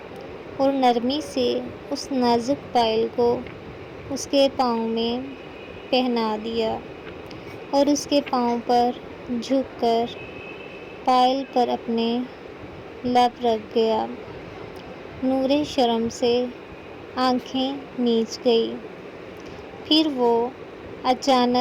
اور نرمی سے اس نازک پائل کو اس کے پاؤں میں پہنا دیا اور اس کے پاؤں پر جھک کر پائل پر اپنے لب رکھ گیا۔ نورے شرم سے آنکھیں میچ گئی۔ پھر وہ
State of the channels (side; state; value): both; identical; correlation 1.00